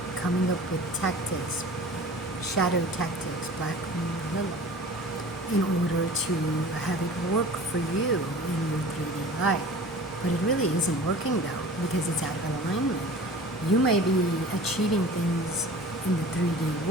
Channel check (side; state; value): both; normal; correlation 0.41